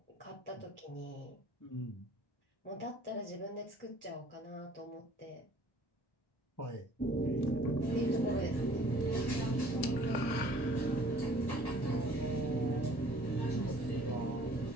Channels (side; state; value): right; late; 1.1 ms